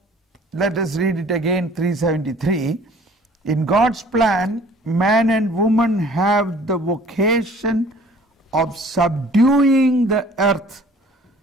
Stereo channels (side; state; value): both; normal; correlation 0.52